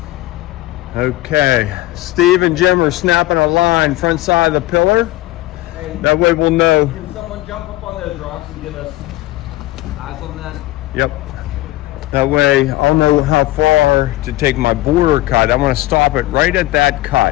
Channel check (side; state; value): right; quieter; 17.5 dB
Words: Okay, Steve and Jim are snapping a line front side of the pillar. Hey, that way we'll know. Can someone jump up on those rocks and give us eyes on that? Yep. That way I'll know how far to take my border cut. I want to stop it right at that